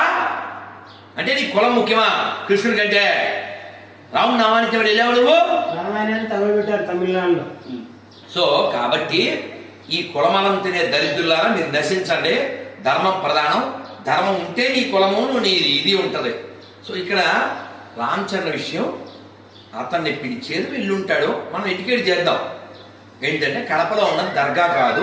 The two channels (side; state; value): both; identical; correlation 1.00